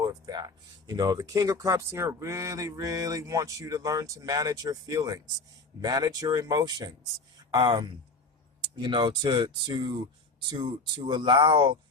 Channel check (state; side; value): quieter; right; 3.4 dB